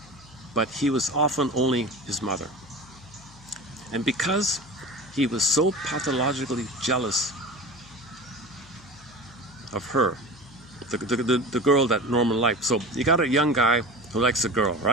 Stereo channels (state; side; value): noise; left; hum, 23 dB below the sound